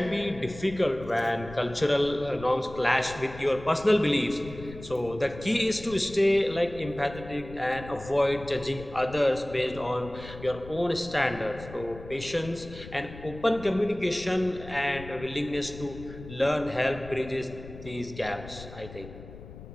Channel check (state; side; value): noise; left; rumble, 15 dB below the sound